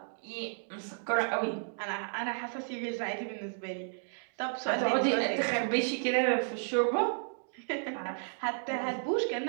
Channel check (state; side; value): silent; left; digital silence